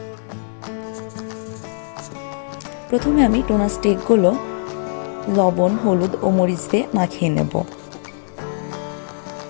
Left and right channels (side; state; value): right; silent; digital silence